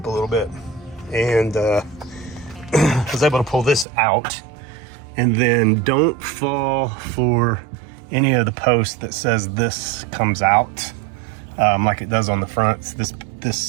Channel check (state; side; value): drops out; left; at 3.9 s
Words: a little bit, and I was able to pull this out. And then don't fall for any of the posts that says this comes out like it does on the fronts.